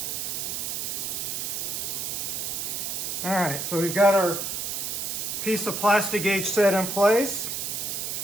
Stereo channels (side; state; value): right; noise; hiss, 2 dB below the sound